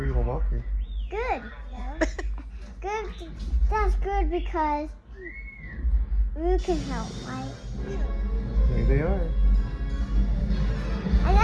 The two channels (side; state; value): both; identical; correlation 1.00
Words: Walker. Good. Good. That's good because Luke can help, right? There they are. I